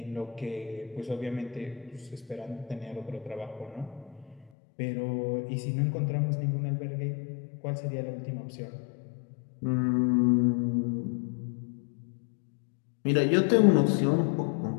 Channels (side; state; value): right; drops out; at 4.5 s